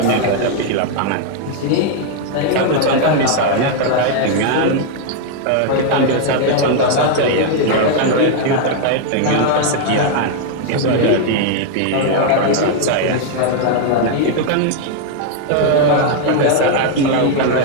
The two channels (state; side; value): different; both; correlation 0.00